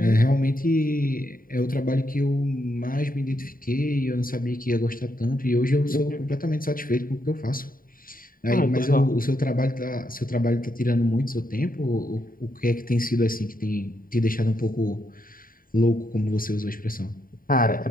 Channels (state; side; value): late; right; 0.41 ms